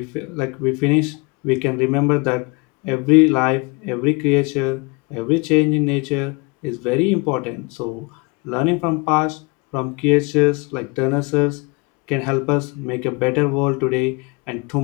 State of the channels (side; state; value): right; quieter; 29.0 dB